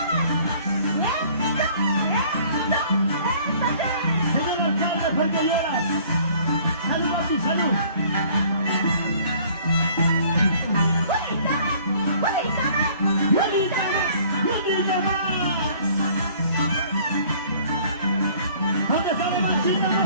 Señor alcalde, ¿por qué lloras? ¡Salud, papi, salud! ¡Bonita más! ¿Dónde está la machita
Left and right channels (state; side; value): inverted; both; correlation -0.55